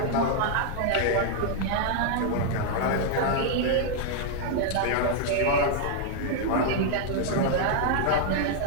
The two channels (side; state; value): both; different; correlation 0.00